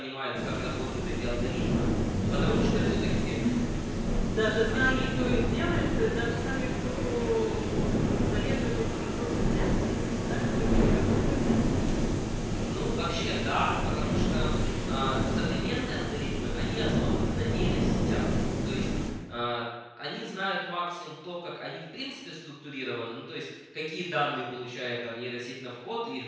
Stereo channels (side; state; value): both; identical; correlation 1.00